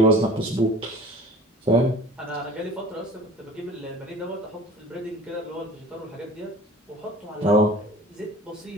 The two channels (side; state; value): both; normal; correlation 0.43